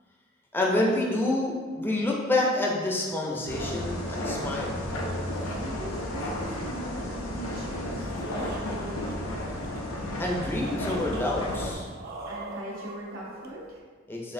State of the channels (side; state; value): both; normal; correlation 0.52